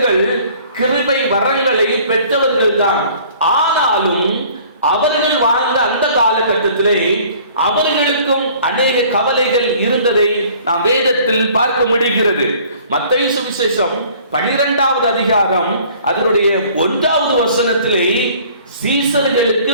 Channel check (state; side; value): inverted; both; correlation -0.53